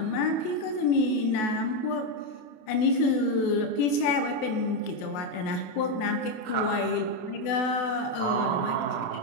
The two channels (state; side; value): late; right; 28 ms